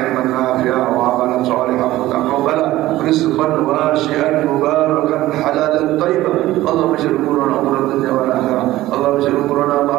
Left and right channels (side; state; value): left; quieter; 16.1 dB